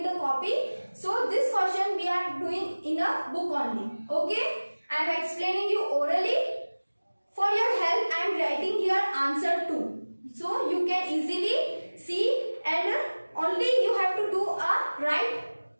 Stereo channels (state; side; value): inverted; both; correlation -1.00